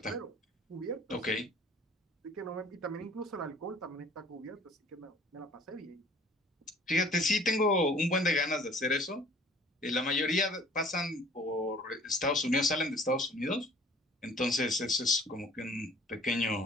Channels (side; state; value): both; normal; correlation 0.52